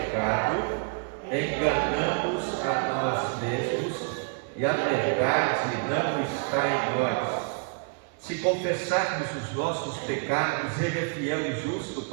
enganamos a nós mesmos e a verdade não está em nós. Se confessarmos os nossos pecados, ele é fiel e justo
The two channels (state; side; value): quieter; left; 36.5 dB